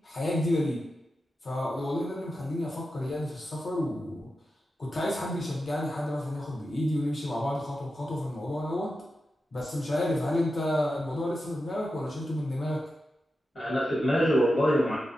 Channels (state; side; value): normal; both; correlation 0.90